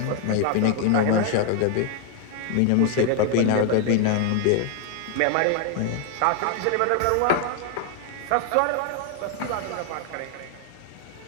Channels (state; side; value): different; both; correlation 0.00